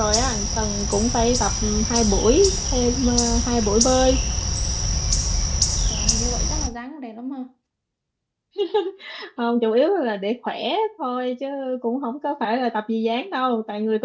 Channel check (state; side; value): identical; both; correlation 1.00